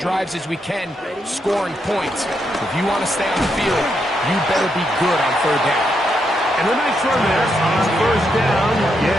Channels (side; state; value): both; normal; correlation 0.80